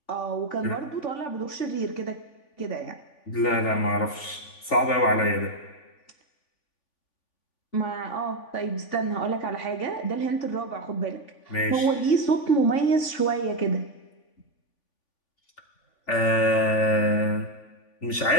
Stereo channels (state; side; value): late; right; 3.5 ms